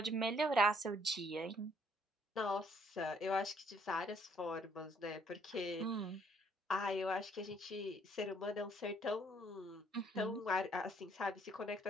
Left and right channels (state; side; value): normal; both; correlation 0.65